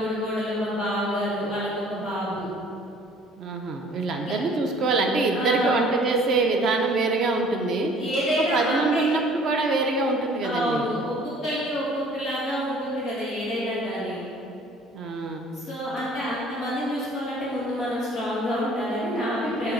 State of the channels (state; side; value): normal; both; correlation 0.53